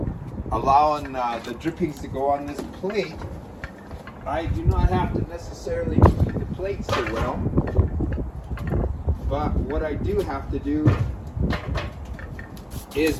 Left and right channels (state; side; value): identical; both; correlation 1.00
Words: allowing the drippings to go on this plate, I do not have to necessarily keep the plate so well. But what I do have to do is